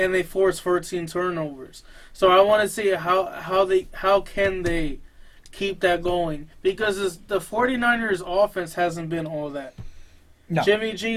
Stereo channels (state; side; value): identical; both; correlation 1.00